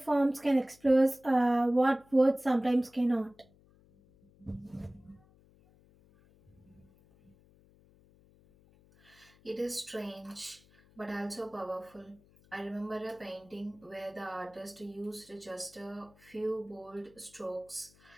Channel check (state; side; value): noise; left; hum, 28 dB below the sound